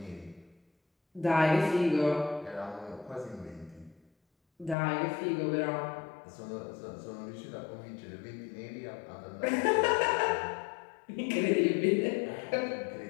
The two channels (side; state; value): right; drops out; at 4.8 s